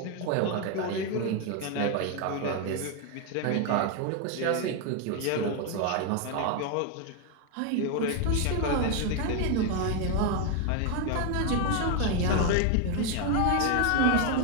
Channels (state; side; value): different; both; correlation 0.01